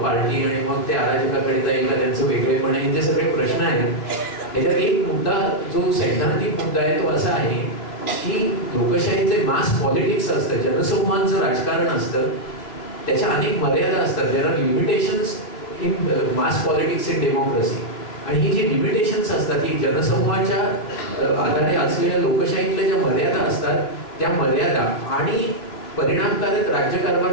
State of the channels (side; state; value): right; late; 3.0 ms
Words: आणि मग ते अराजकाकडे जाईल का त्यांचं वेगळेपण, हे जे सगळे प्रश्न आहेत, याच्यात एक मुद्दा जो सैद्धांतिक मुद्दा आहे तो असा आहे की लोकशाहीचे मास पॉलिटिक्स असतं, जनसमूहांचं राजकारण असतं, त्याच्या अनेक मर्यादा असतात. There are limitations in mass politics in democracy. आणि ही जी लिमिटेशन्स असतात ही जनसमूहाच्या आधारे असलेल्या लोकशाहीतल्या ज्या मर्यादा असतात, त्या मर्यादा आणि परिणामकारक